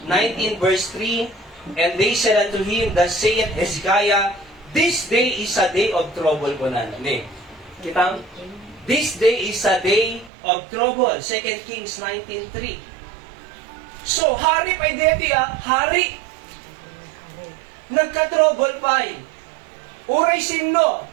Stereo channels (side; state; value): left; drops out; at 10.3 s